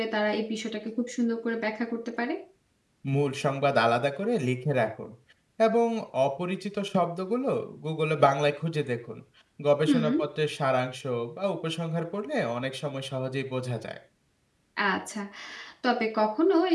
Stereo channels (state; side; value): identical; both; correlation 1.00